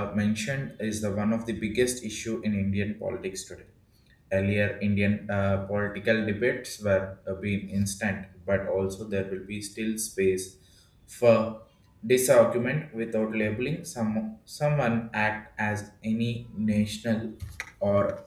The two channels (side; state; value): both; identical; correlation 1.00